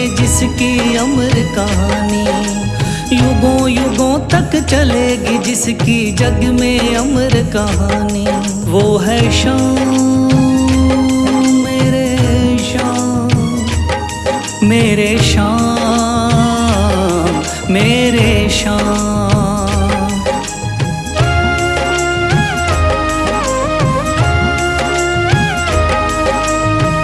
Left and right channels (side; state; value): both; identical; correlation 1.00